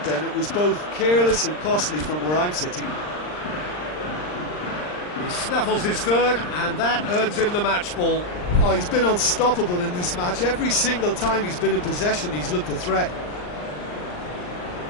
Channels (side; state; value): right; late; 39 ms